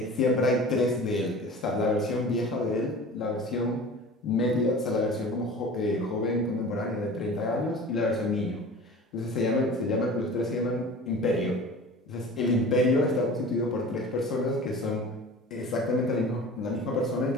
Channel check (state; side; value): normal; both; correlation 0.40